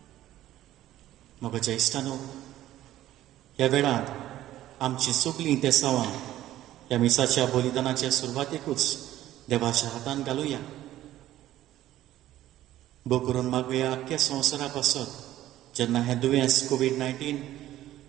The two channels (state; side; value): quieter; left; 13.8 dB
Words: मग ज्येष्ठानो, ह्या वेळार आमची सगळीं तेसावां ह्या मिसाच्या बलिदानाच्या सुरवातेकूच देवाच्या हातान घालुया. भोव करून मागुया आख्ख्या संवसारा पासत जेन्ना हें दुयेंस कोवीड-19